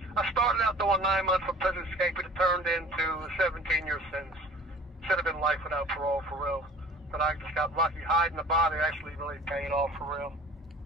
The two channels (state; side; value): normal; both; correlation 0.46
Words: I started out doing 9 months for prison escape, but it turned into a 17-year sentence. Should have been life without parole, for real. But I just got lucky. Hiding the body actually really paid off, for real.